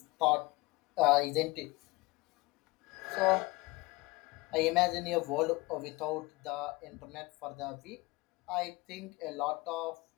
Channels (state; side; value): quieter; right; 22.7 dB